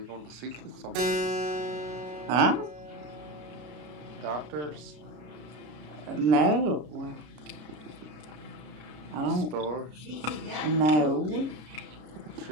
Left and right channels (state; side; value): late; left; 33 ms